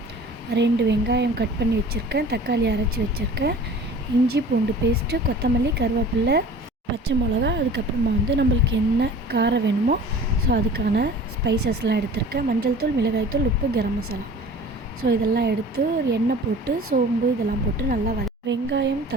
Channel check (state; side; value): normal; both; correlation 0.43